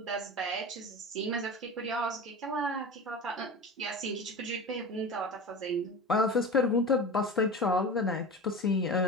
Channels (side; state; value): both; normal; correlation 0.31